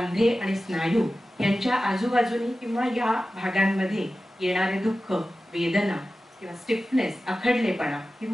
आणि स्नायू यांच्या आजूबाजूनी किंवा या भागांमध्ये येणारे दुःख, वेदना किंवा स्टिफनेस, आखडलेपणा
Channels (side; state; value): both; normal; correlation 0.95